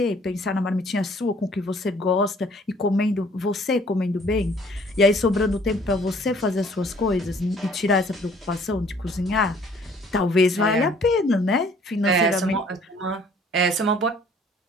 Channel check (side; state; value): both; normal; correlation 0.57